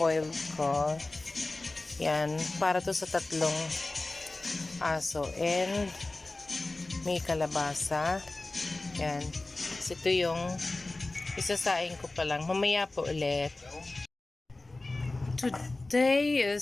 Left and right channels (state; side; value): quieter; right; 3.0 dB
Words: ko. Yan, para to sa 3 aso. And may kalabasa. Yan. So, ito yung isasaing ko pa lang. Mamaya po ulit. Today